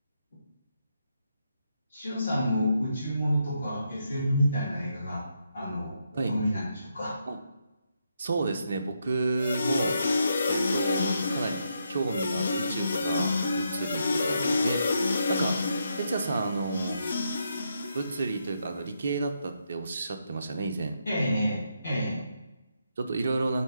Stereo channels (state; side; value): inverted; both; correlation -0.80